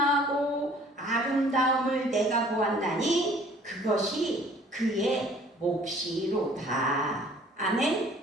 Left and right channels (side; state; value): both; normal; correlation 0.54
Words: 아름다움을 내가 보았나니 그것이 그의 몫이로다. 아멘.